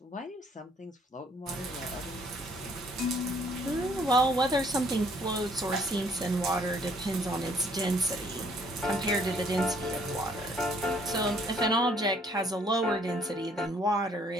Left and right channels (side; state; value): both; normal; correlation 0.63